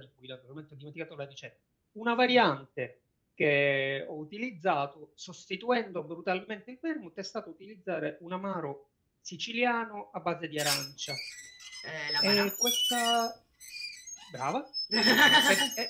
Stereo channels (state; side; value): identical; both; correlation 1.00